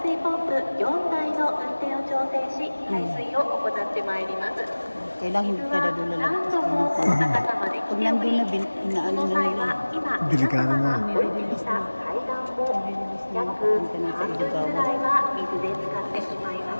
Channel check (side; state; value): both; inverted; correlation -1.00